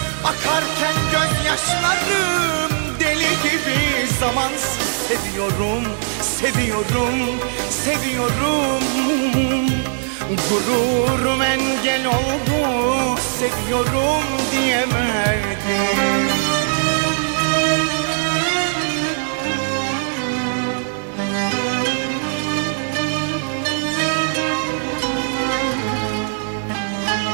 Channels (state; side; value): silent; left; digital silence